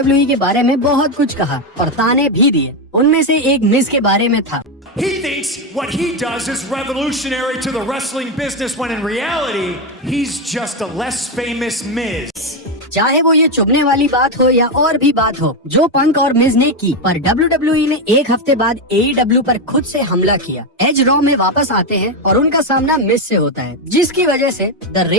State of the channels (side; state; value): both; normal; correlation 0.08